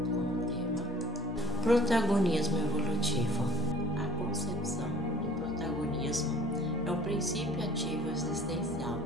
tema, Protagonismo Evolutivo. A concepção do protagonismo é o princípio ativo existencial.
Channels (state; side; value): normal; both; correlation 0.50